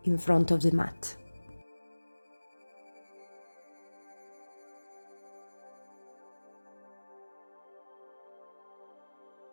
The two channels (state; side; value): inverted; both; correlation -1.00